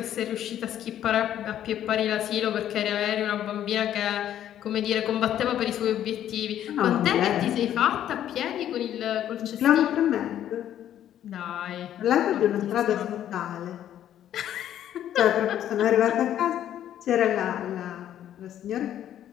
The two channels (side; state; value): right; quieter; 11.1 dB